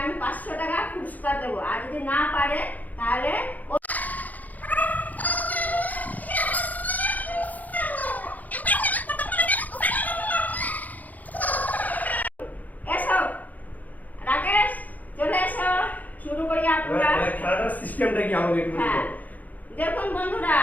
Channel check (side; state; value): right; late; 0.080 ms